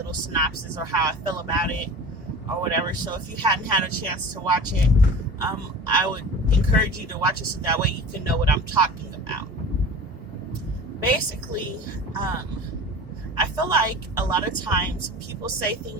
synopsis or how I feel about it or whatever. So if you hadn't had a chance to watch it, I would encourage you to watch it so that way you can know what I'm talking about. Basically, I feel like a lot of times people say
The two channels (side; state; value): both; normal; correlation 0.37